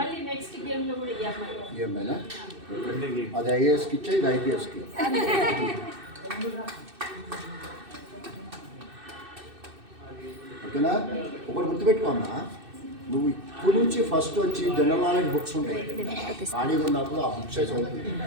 నెక్స్ట్ గేమ్ లో కూడా ఈ అమ్మాయి. ఏమైనా అది ఐఏఎస్కి ఇచ్చే, ఇది ఐపీఎస్కి. ఓకేనా? ఒకటి గుర్తుపెట్టుకోమ్మా, నువ్వు ఇప్పుడు నుంచి ఫస్ట్ వచ్చి జనరల్ నాలెడ్జ్ బుక్స్ ఉంటాయి, ఖాళీగా ఉన్నప్పుడు ఆ బుక్స్ చదువుతుంది.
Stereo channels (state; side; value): late; left; 2.6 ms